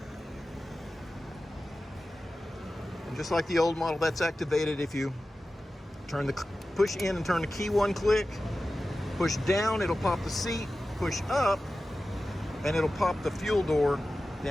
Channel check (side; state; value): both; normal; correlation 0.94